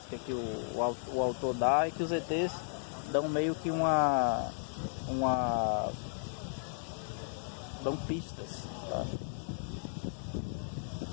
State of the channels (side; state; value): right; silent; digital silence